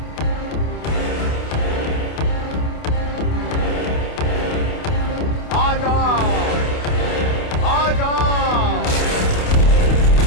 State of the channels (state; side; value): late; right; 28 ms